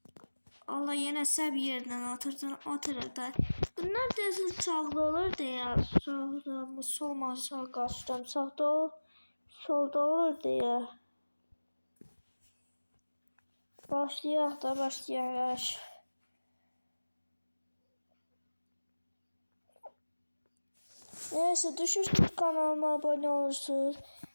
Allah yine bir yerden atırdı. Bunlar da sağlı olur diye. Sağda solma sağ kaçtım. Solda olur diye. Başlayaq. Neyse düşürsünüz kanalıma abone olursunuz.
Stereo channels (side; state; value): both; inverted; correlation -1.00